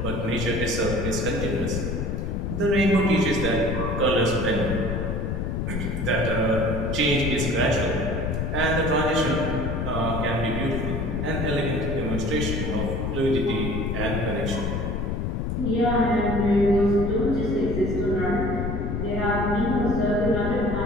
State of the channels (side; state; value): left; noise; rumble, 2 dB below the sound